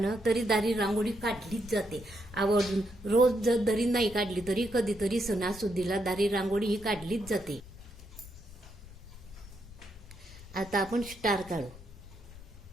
तरी दारी रांगोळी काढलीच जाते आवर्जून. रोज जर दरी नाही काढली तरी कधीतरी सणासुदीला दारी रांगोळी ही काढलीच जाते. आता आपण स्टार काढू.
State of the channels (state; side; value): noise; left; rumble, 17 dB below the sound